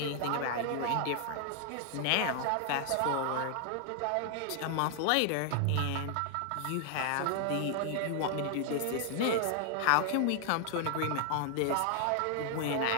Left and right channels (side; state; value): both; different; correlation 0.00